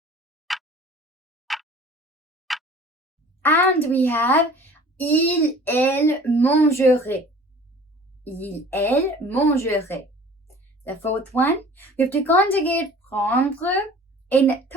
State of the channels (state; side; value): normal; both; correlation 0.47